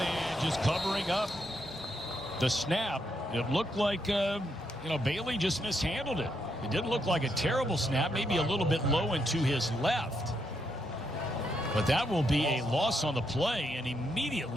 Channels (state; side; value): normal; both; correlation 0.79